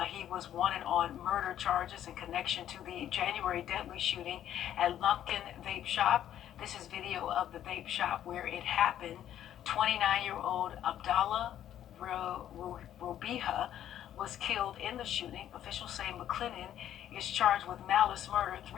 He was wanted on murder charges in connection to the January deadly shooting at Lumpkin Vape Shop. This is video of the vape shop where it happened. 29-year-old Abdallah Robiha was killed in the shooting. Officials say McClennan is charged with malice murder,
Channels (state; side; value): quieter; right; 11.1 dB